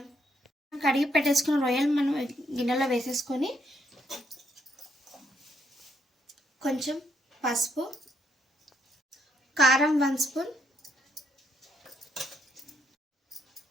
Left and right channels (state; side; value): normal; both; correlation 0.74